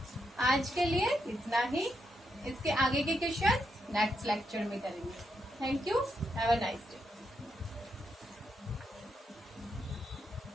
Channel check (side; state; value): both; normal; correlation 0.82